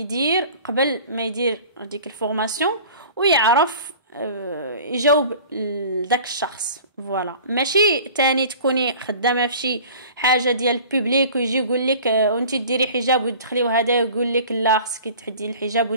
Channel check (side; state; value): both; inverted; correlation -0.43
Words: قبل ما يدير ديك الفورماسيون ويعرف يجاوب لذاك الشخص فوالا ماشي تاني تكوني خدامه في شي حاجه ديال البوبليك ويجي يقول لك وانت ديري حجاب وتدخلي وهذا يقول لك لا خصك تحدي الحجاب